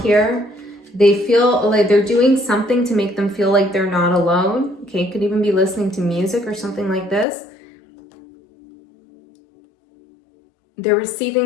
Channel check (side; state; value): right; drops out; at 7.2 s